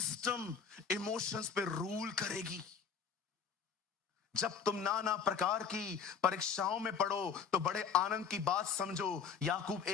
इमोशंस पे रूल करेगी? जब तुम नाना प्रकार की परीक्षाओं में पढ़ो तो बड़े आनंद की बात समझो। याकूब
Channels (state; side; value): quieter; right; 6.5 dB